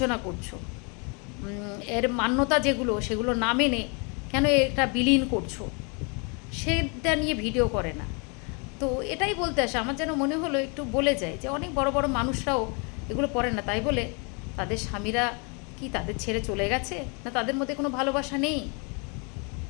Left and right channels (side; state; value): right; quieter; 34.0 dB